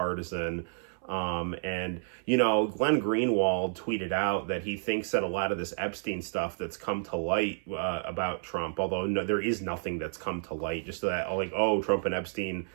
And, you know, Glenn Greenwald tweeted out that he thinks that a lot of this Epstein stuff that's come to light about Trump, although no, there is nothing that's come to light, just that, like, oh, Trump and Epstein,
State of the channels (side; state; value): left; silent; 58 dB below the other